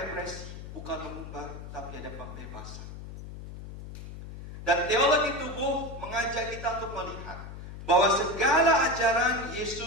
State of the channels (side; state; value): left; noise; hum, 11 dB below the sound